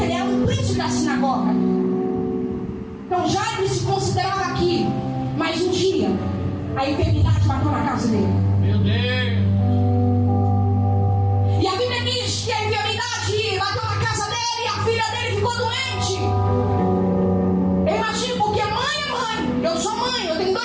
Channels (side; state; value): both; identical; correlation 1.00